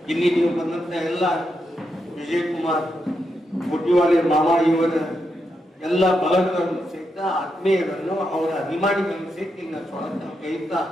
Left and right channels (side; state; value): both; normal; correlation 0.83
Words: ಇಲ್ಲಿ ನೀವು ಬಂದಂತ ಎಲ್ಲ ವಿಜಯ್ ಕುಮಾರ್ ಕೊಟ್ಟಿವಾಲೆ ಮಾಮ ಇವರ ಎಲ್ಲ ಬಳಗಗಳನ್ನು ಸಹಿತ ಆತ್ಮೀಯರನ್ನು ಅವರ ಅಭಿಮಾನಿಗಳನ್ನು ಸಹಿತ ಈಗ ಸ್ವಾಗತ ಕೈತಾ